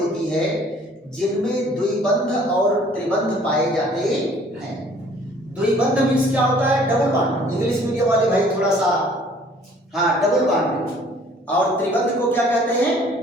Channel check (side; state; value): both; normal; correlation 0.56